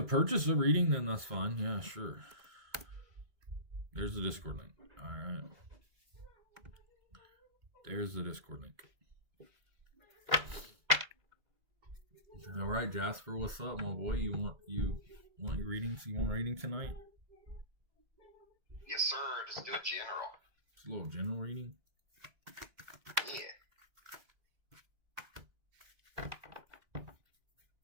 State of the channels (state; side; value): late; left; 2.2 ms